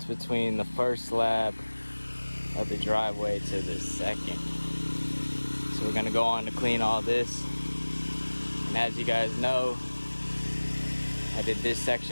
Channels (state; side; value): inverted; both; correlation -1.00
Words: between the first slab of the driveway to the second. So we're gonna go on to clean all this. And as you guys know, I did this